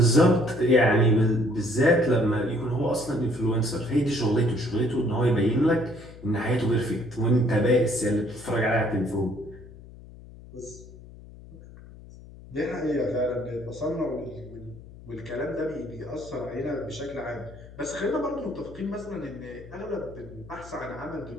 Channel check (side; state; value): left; noise; hum, 18 dB below the sound